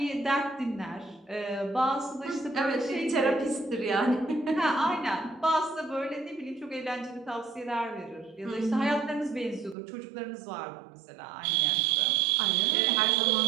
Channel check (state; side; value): drops out; left; at 9.8 s